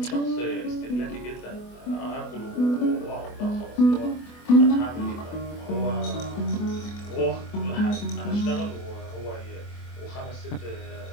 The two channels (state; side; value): late; right; 24 ms